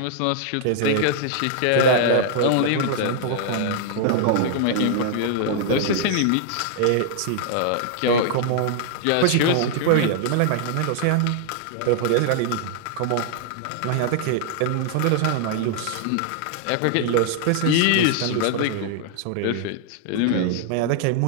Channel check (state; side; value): different; both; correlation -0.01